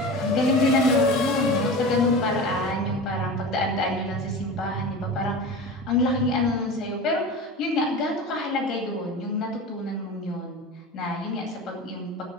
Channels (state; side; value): normal; both; correlation 0.31